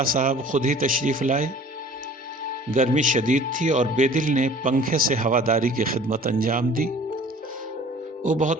صاحب خود ہی تشریف لائے۔ گرمی شدید تھی اور بے دل نے پنکھے سے ہواداری کی خدمت انجام دی۔ وہ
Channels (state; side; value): normal; both; correlation 0.48